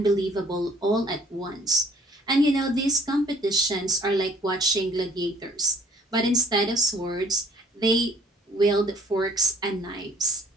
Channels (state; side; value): normal; both; correlation 0.57